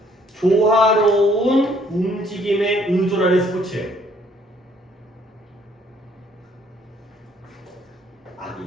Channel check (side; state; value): both; normal; correlation 0.64